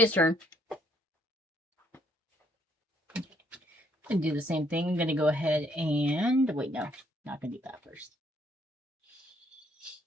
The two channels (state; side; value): normal; both; correlation 0.69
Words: turn. I'm gonna do the same thing. I'm gonna go ahead and... Wait, no. Not gonna do that first.